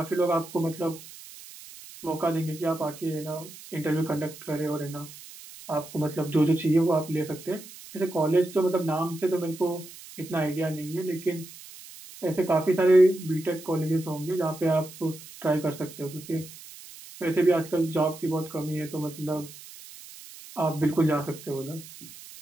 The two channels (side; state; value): right; noise; hiss, 17 dB below the sound